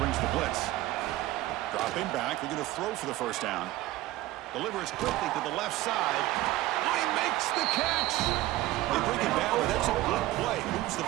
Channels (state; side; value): quieter; left; 16.7 dB